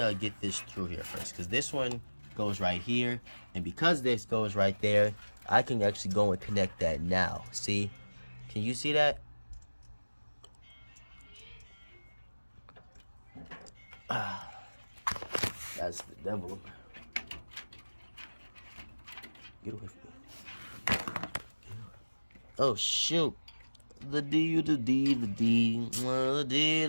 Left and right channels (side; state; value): both; inverted; correlation -1.00